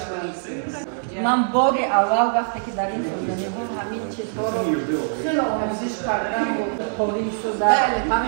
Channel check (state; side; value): silent; left; digital silence